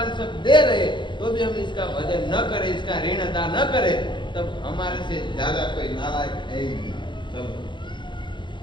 सब दे रहे तो भी हम इसका भजन न करें, इसका ऋण अदा न करें, तब हमारे से ज्यादा कोई नालायक है ही नहीं। तब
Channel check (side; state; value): right; late; 0.23 ms